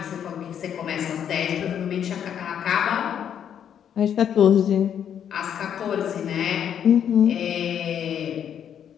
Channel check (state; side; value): quieter; right; 8.9 dB